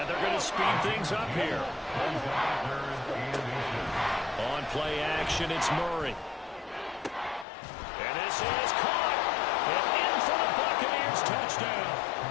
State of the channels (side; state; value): right; drops out; at 7.5 s